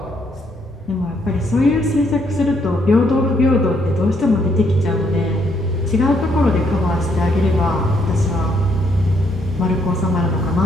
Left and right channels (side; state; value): both; normal; correlation 0.72